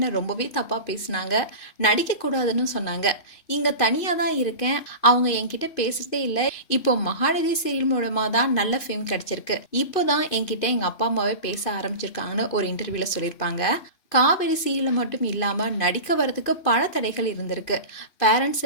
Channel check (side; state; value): right; late; 2.5 ms